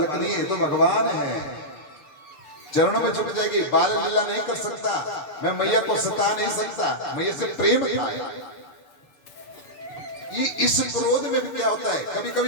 नहीं है, ये तो भगवान है, चरणों में झुक जाएगी। बाल लीला नहीं कर सकता, मैं मैया को सता नहीं सकता, मैया से प्रेम था। ये इस क्रोध में भी क्या होता है, कभी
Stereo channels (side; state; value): right; late; 6.8 ms